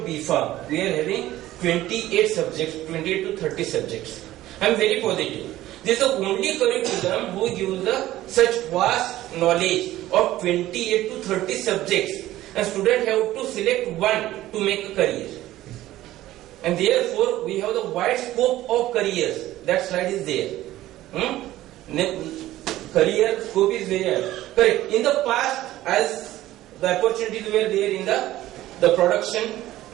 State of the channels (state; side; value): quieter; left; 15.1 dB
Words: B.Pharm, we are having 28 subjects, 28 to 30 subjects. I am very positive. This is the only curriculum who gives such vast knowledge of 28 to 30 subjects. And students have to select one to make a career. And therefore, we have the wide scope of careers. That slide is there. Career scope is there. Correct. In the past, as the opportunities were there in the production,